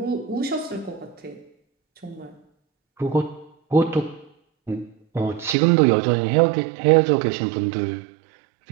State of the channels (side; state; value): left; drops out; at 5.6 s